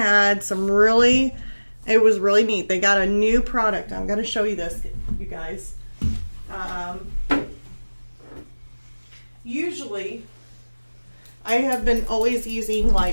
some really, it was really neat. They got a new product. I'm going to show you this, you guys. Usually I have been always using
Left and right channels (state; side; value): inverted; both; correlation -1.00